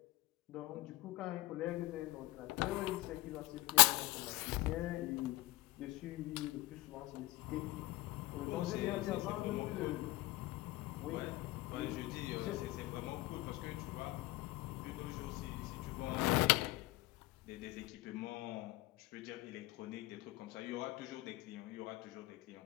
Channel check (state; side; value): quieter; right; 19.5 dB